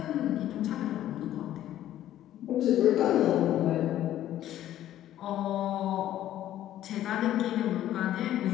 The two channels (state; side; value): quieter; right; 12.6 dB